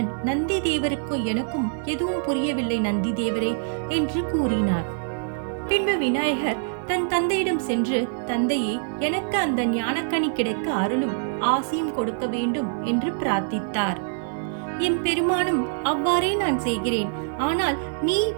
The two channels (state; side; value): silent; left; 57 dB below the other